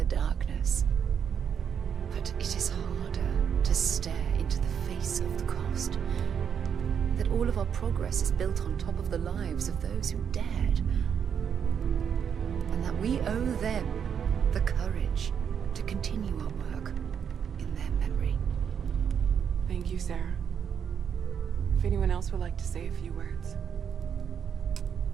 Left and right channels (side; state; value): left; quieter; 7.7 dB